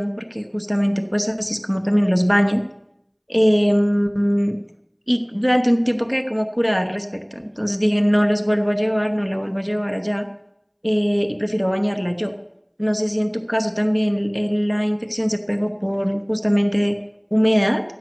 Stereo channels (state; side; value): identical; both; correlation 1.00